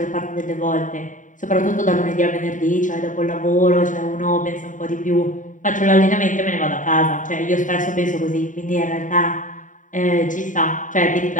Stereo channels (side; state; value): right; late; 0.37 ms